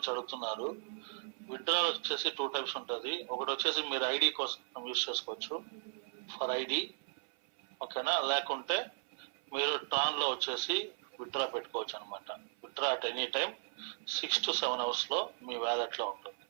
అడుగుతున్నారు. విత్డ్రా వచ్చేసి 2 types ఉంటుంది. ఒకటి వచ్చేసి మీరు ఐడి కోసం యూజ్ చేసుకోవచ్చు ఫర్ ఐడి. ఓకేనా, లేకుంటే మీరు ట్రాన్ లో వచ్చేసి విత్డ్రా పెట్టుకోవచ్చు అనమాట. Withdraw at any time 6 to 7 hours లో మీ వ్యాలెట్ లో ఉంటుంది,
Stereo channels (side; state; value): left; silent; 53 dB below the other